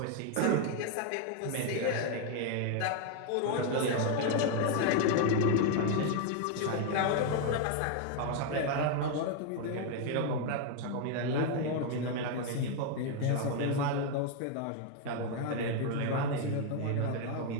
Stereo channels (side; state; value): both; different; correlation 0.01